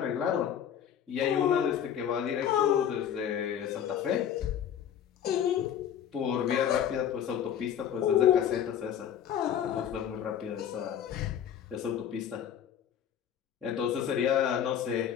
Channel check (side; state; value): right; quieter; 9.3 dB